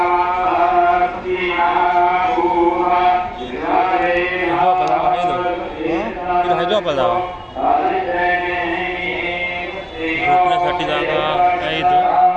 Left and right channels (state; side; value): identical; both; correlation 1.00